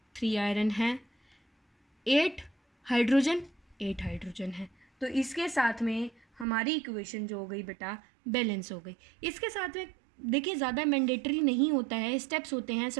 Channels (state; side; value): drops out; left; at 6.5 s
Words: है, 8 हाइड्रोजन है। तो इसके साथ में हमारी इक्वेशन जो हो गई बेटा बैलेंस हो गई। इसके साथ में देखिए ज़्यादा मैंडेटरी नहीं होता है, स्टेप्स होते हैं।